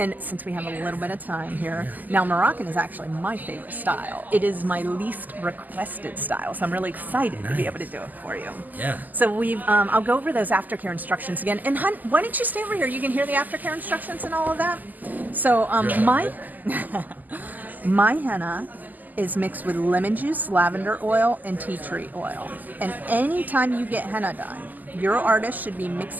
since we have a little bit of time here, now Moroccan is actually my favorite style. It is my least requested style. So I'm really excited to be able to do it for you. Yeah. So I'll go over those aftercare instructions again. And hun, why don't you stay over here? You can hear the aftercare instructions and all of that. So my henna is mixed with lemon juice, lavender oil, and tea tree oil. And anytime you get henna done, your artist should be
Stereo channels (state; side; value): late; left; 0.083 ms